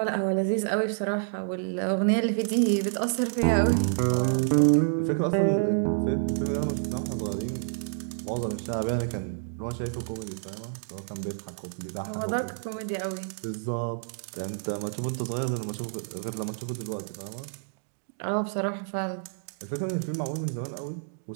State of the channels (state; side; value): silent; left; digital silence